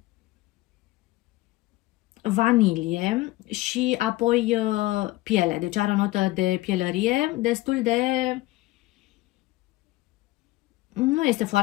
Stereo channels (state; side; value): quieter; right; 18.9 dB